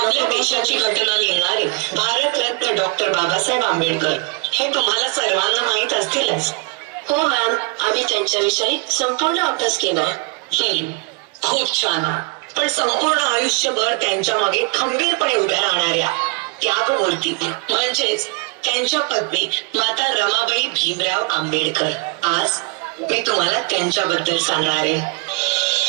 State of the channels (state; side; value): quieter; left; 29.5 dB